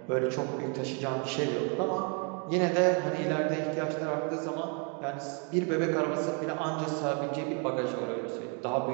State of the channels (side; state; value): left; quieter; 36.7 dB